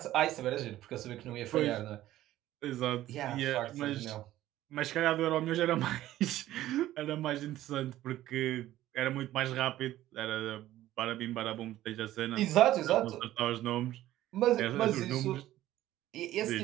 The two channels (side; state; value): left; quieter; 14.3 dB